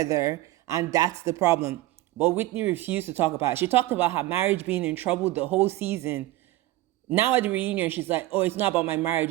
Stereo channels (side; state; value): left; quieter; 16.7 dB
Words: and that's the problem. But Whitney refused to talk about it. She talked about her marriage being in trouble the whole season. Now at the reunion, she's like, oh, it's not about my marriage.